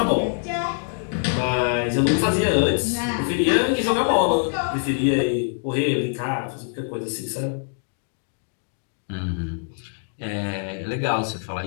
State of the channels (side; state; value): right; silent; digital silence